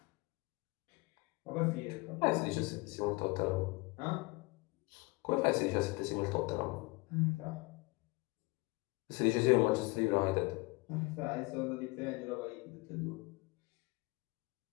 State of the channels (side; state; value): right; quieter; 25.2 dB